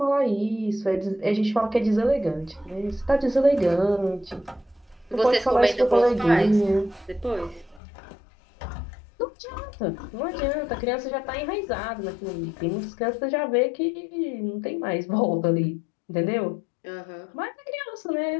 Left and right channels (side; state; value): right; drops out; at 7.8 s